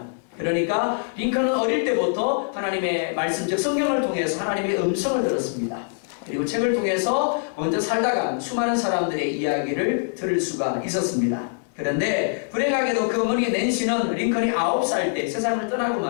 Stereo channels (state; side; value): silent; right; digital silence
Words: 그러니까 링컨은 어릴 때부터 하나님의 말씀, 즉 성경을 통해서 하나님의 음성을 들었습니다. 그리고 책을 통해서 먼저 살다간 수많은 사람들의 이야기를 들을 수가 있었습니다. 그런데 불행하게도 그 어머니 낸시는 링컨이 9살 때 세상을 떠나고